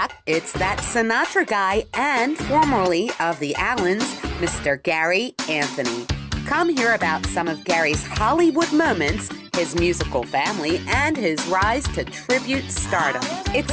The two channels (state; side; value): identical; both; correlation 1.00